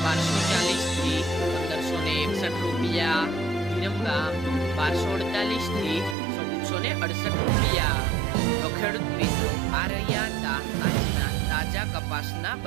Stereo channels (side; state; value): left; drops out; at 6.2 s